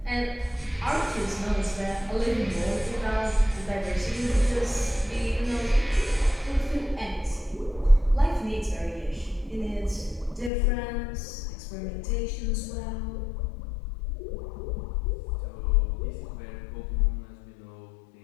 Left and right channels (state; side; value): drops out; right; at 10.5 s